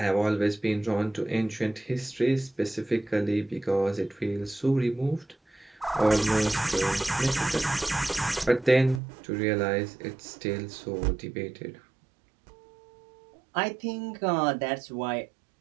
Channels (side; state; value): left; drops out; at 9.0 s